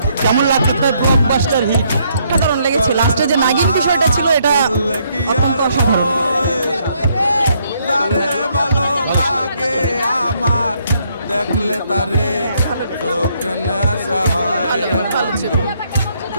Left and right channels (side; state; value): both; inverted; correlation -0.71